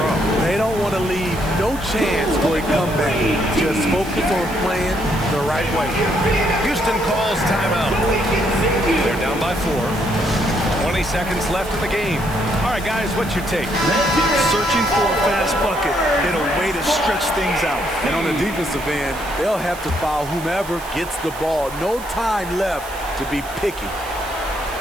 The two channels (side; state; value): right; noise; hiss, 16 dB below the sound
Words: They don't want to leave no chance for a comeback. Just focus on playing the right way. Houston calls timeout. They're down by 4. 20 seconds left in the game. All right, guys, what's your take? Searching for a fast bucket and a way to stretch things out. And on the defensive end, they'll have to foul whomever gets the ball. No time left to be picky.